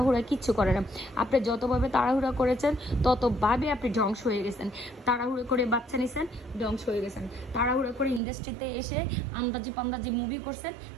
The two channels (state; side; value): drops out; left; at 8.2 s